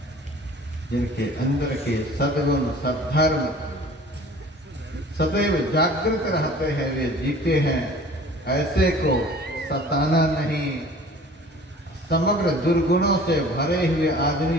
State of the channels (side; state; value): both; normal; correlation 0.47